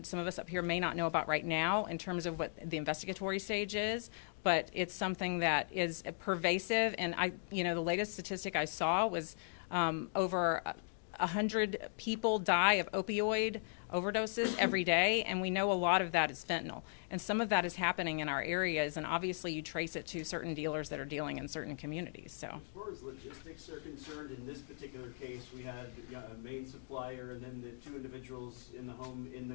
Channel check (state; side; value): silent; right; digital silence